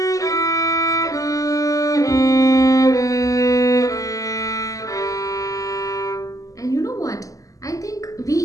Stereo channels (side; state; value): right; late; 0.17 ms